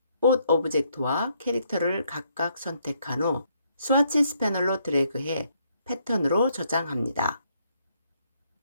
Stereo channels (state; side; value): inverted; both; correlation -0.72